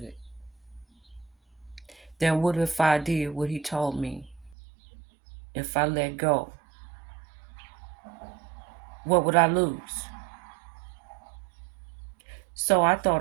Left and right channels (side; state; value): left; drops out; at 4.5 s